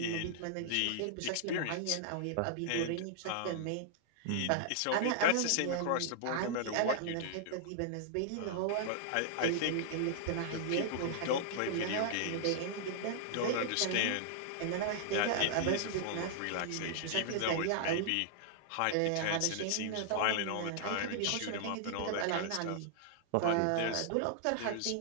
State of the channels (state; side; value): different; both; correlation -0.01